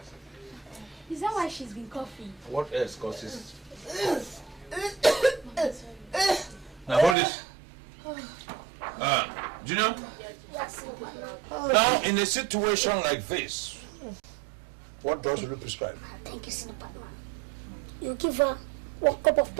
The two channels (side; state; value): left; drops out; at 7.2 s